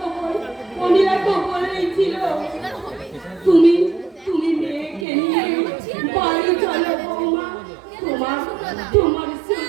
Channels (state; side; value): drops out; left; at 5.1 s